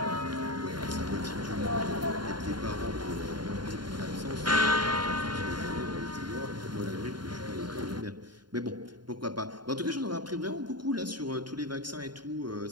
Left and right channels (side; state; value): left; late; 0.71 ms